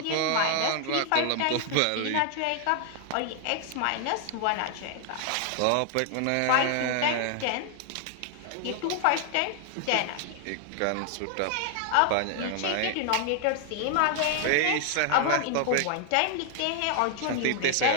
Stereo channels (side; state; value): both; different; correlation 0.00